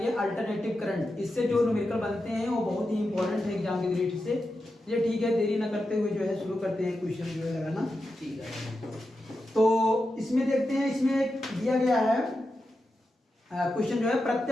अल्टरनेटिव करंट। इससे जो न्यूमेरिकल बनते हैं वो बहुत ही इंपॉर्टेंट है एग्जाम की दृष्टि से। ये ठीक है, देरी न करते हुए जो है शुरू करते हैं क्वेश्चन जो है लगाना। ठीक है, तो इसमें देखते हैं, इसमें दिया गया है क्वेश्चन जो है,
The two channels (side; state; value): both; normal; correlation 0.89